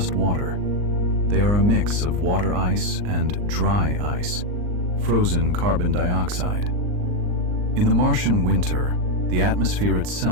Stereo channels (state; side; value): late; left; 39 ms